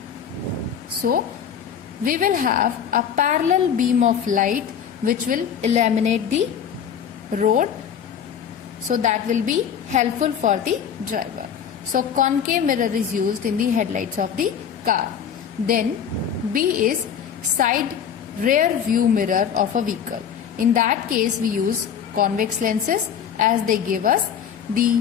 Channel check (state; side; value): quieter; right; 8.1 dB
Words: So we will have a parallel beam of light which will illuminate the road, so that will be helpful for the driver. So concave mirror is used in the headlights of the car. Then B is side rear view mirror of a vehicle. In that case we use convex lenses, as they give us